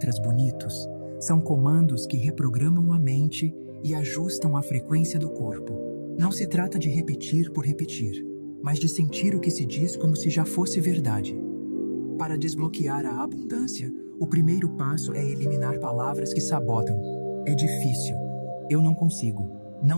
bonitos, são comandos que reprogramam a mente e ajustam a frequência do corpo. Não se trata de repetir por repetir, mas de sentir o que se diz como se já fosse verdade. Para desbloquear a abundância, o primeiro passo é eliminar palavras que sabotam. É difícil. Eu não consigo.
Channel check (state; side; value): inverted; both; correlation -1.00